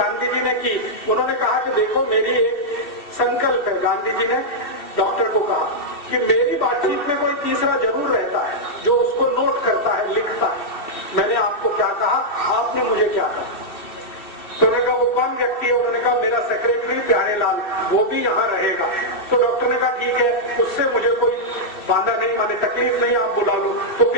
जी ने की, उन्होंने कहा कि देखो, मेरी एक संकल्प है। गांधी जी ने डॉक्टर को कहा कि मेरी बातचीत में कोई तीसरा जरूर रहता है जो उसको नोट करता है, लिखता है। मैंने आपको क्या कहा, आपने मुझे क्या कहा? तो उन्होंने कहा, वो कौन व्यक्ति है? उन्होंने कहा, मेरा सेक्रेटरी प्यारेलाल, वो भी यहाँ रहेगा। तो डॉक्टर ने कहा, ठीक है, उससे मुझे कोई बांधा नहीं, माने तकलीफ नहीं, आप बुला लो। तो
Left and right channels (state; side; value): late; right; 2.7 ms